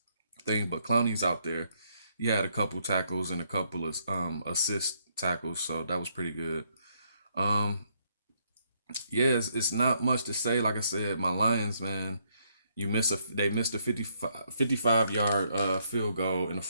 thing, but Clowney's out there. He had a couple tackles and a couple of assist tackles, so that was pretty good. Um, yeah, it's not much to say. Like I said, my Lions, man, they missed a 55 yard field goal in the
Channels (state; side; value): inverted; both; correlation -0.73